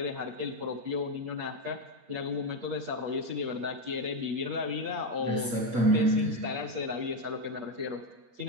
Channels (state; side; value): late; left; 8.5 ms